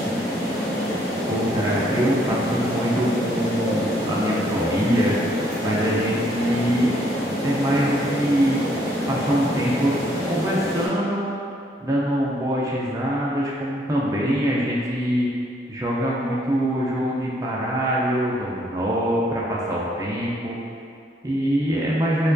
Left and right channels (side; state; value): both; normal; correlation 0.68